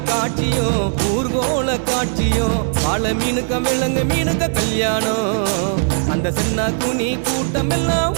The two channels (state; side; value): silent; left; digital silence